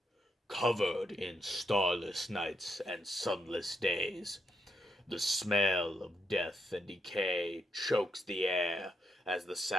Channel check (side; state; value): both; normal; correlation 0.79